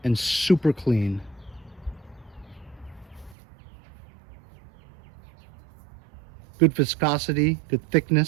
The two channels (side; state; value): left; drops out; at 3.4 s